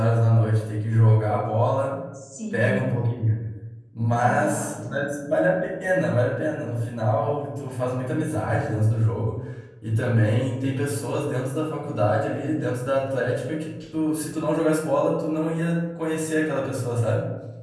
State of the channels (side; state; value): both; identical; correlation 1.00